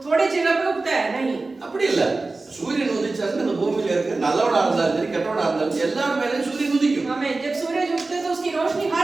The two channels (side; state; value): left; quieter; 3.5 dB